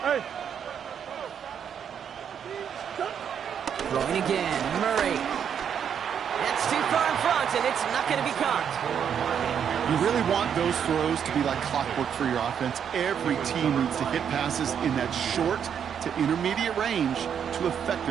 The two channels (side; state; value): left; quieter; 8.1 dB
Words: Throwing again, Murray. That's too far in front, and it's not going to be caught. You really want those throws to be like clockwork for your offense. Every team needs to hit passes in that short to intermediate range to